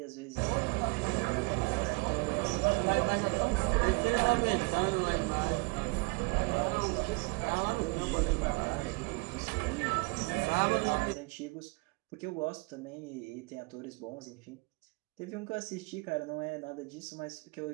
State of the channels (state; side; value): quieter; left; 28.7 dB